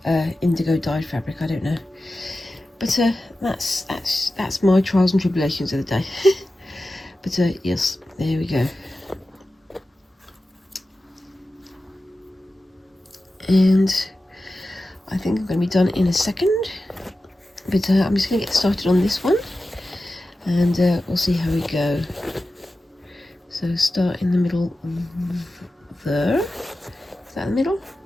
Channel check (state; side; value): normal; both; correlation 0.94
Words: indigo dyed fabric, I don't know. But that's my trials and tribulations of the day. But yes, there we go. And I think I'm going to be done in a second. But I'm just going to get started on this one, and we'll see how we go. So start in the middle there. Is that the middle?